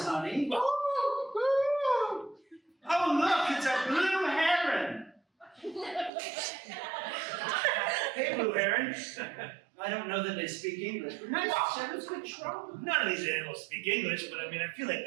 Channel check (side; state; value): left; drops out; at 6.1 s